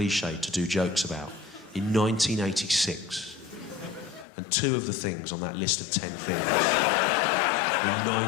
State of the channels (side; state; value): right; drops out; at 4.2 s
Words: to do jokes about in 1986. And 2 of the things on that list of 10 things in